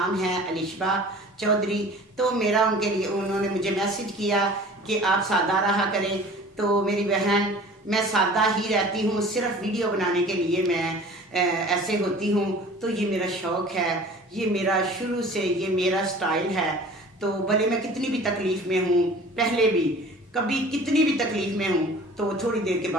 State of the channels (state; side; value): normal; both; correlation 0.44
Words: है अलिशबा चौधरी। तो मेरा उनके लिए, उन्होंने मुझे मैसेज किया कि आप सादा रहा करें। तो मेरी बहन, मैं सादा ही रहती हूँ, सिर्फ वीडियो बनाने के लिए मैं ऐसे होती हूँ। तो ये मेरा शौक़ है, ये मेरा शुरू से ये मेरा स्टाइल है। तो भले मैं कितनी भी तकलीफ़ में हूँ, पहले भी कभी कितनी भी तकलीफ़ में हूँ, तो थोड़ी देर के